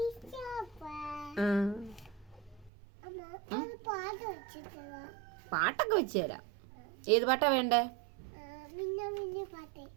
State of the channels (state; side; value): drops out; left; at 2.7 s